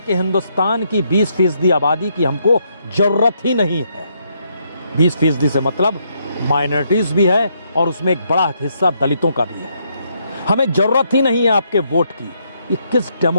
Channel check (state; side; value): inverted; both; correlation -0.74